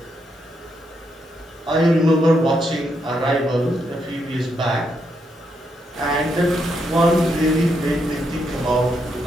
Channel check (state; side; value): normal; both; correlation 0.79